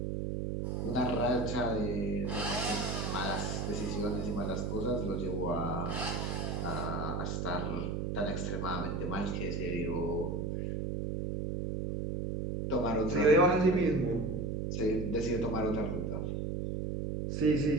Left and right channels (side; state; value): right; noise; hum, 1 dB below the sound